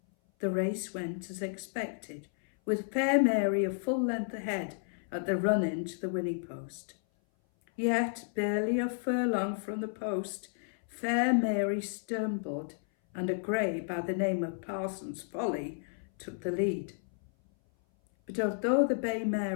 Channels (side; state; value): right; silent; 56 dB below the other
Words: The race went as expected, with Fair Mary a full length ahead at the run-in to the winning post. Yet, barely a furlong from the post, Fair Mary stumbled, and a grey by the name of Parsons Folly took the lead. But although the bay mare